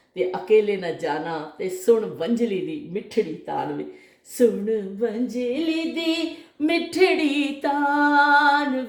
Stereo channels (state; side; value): identical; both; correlation 1.00